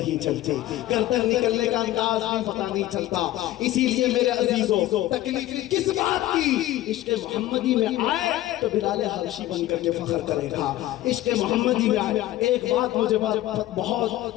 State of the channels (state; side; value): quieter; right; 15.1 dB